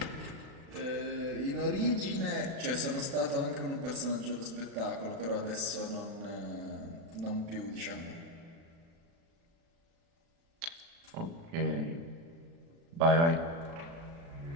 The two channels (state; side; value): late; left; 36 ms